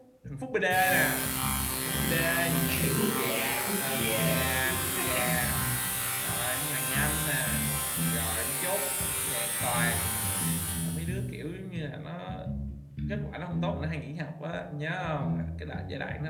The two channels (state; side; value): identical; both; correlation 1.00